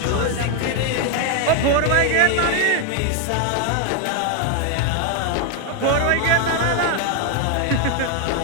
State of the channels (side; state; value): both; different; correlation 0.01